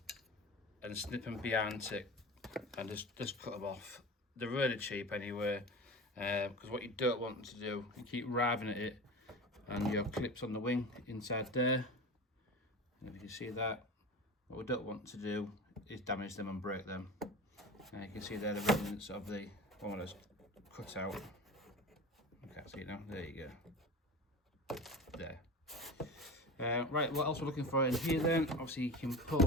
and snip them behind it and just cut them off. They're really cheap anyway, because what you don't want to do, you keep riving at it and your clips on the wing inside there, and if you can see that, what we don't want to do is damage them and break them. And you can see there the remnants of the one that's cut out. I can't see it now, there you go, there. Right, what else we're looking for in here then? Obviously you can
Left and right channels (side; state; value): both; normal; correlation 0.31